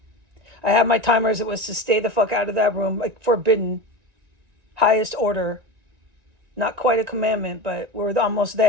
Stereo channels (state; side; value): late; left; 1.9 ms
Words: I have my timers. It was to stay the fuck out of that room, like forbidden, highest order. Not quite a commandment, but we're almost